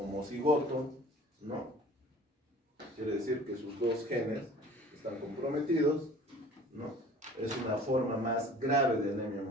¿no? Quiere decir que sus dos genes están comprometidos, ¿no? Es una forma más grave de anemia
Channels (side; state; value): both; normal; correlation 0.47